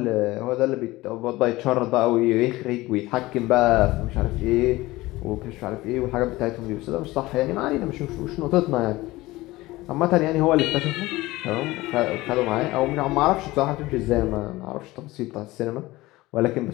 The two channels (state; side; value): quieter; right; 19.2 dB